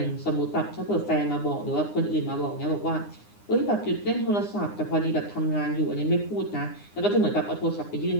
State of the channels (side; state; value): right; late; 9.8 ms